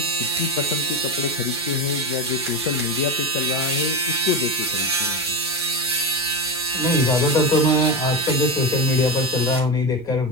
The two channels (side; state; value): both; normal; correlation 0.17